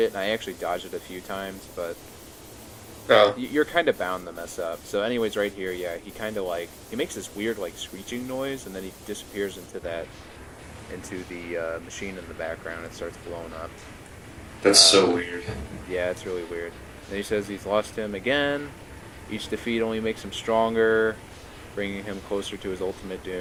and I actually dodged it a few times, but Oh. you're kind of bound to mess up. So anyways, right here, yeah, he kind of like, he makes this weird like screeching noise, and then he disappears into the machine in the background and starts blowing up. That's so weird. Yeah, it's really weird. Then he says he's lost him again. Each defeat only makes him stronger, bringing him closer to his ultimate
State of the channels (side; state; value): both; identical; correlation 1.00